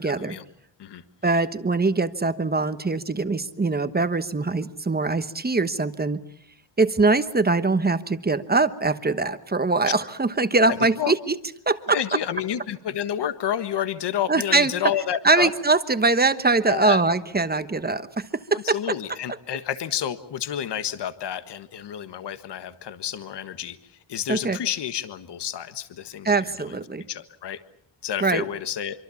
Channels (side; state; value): both; normal; correlation 0.12